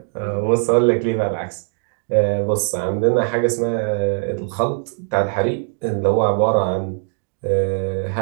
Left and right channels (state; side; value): silent; left; 59 dB below the other